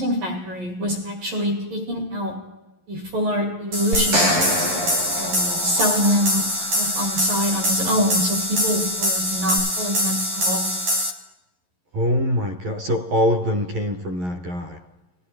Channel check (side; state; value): left; late; 11 ms